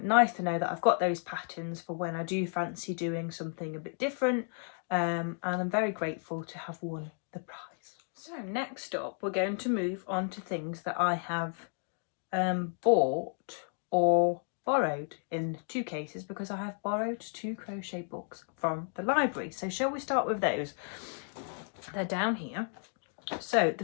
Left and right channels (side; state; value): right; silent; 56 dB below the other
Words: to know that I've got those patterns for when I do fancy doing something a bit different, and I'm very grateful to have won the prize. So next up, we're going to move on to things that I have bought or borrowed in 2 cases, because I have borrowed 2 crochet books from the library. So shall we start with those? They're down here. So the